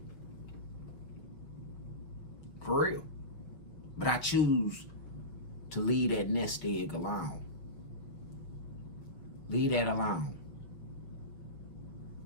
For real. But I choose to leave that nest egg alone. Leave that alone.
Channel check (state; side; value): late; right; 6.1 ms